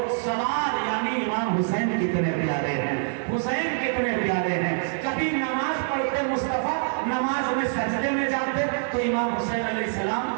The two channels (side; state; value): left; silent; digital silence